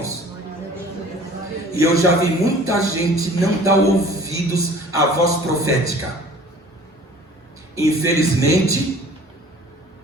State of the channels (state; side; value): normal; both; correlation 0.48